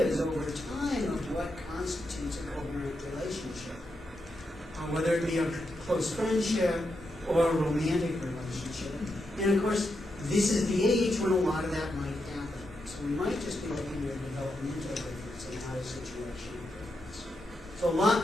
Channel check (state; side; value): normal; both; correlation 0.84